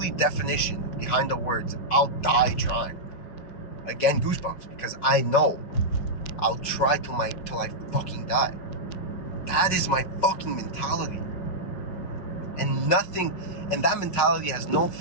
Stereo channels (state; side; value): late; right; 5.4 ms